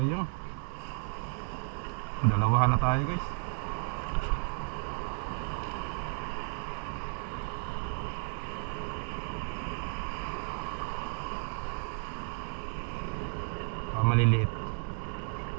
Dalawahan na tayo guys. Maliliit.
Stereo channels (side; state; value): left; silent; 56 dB below the other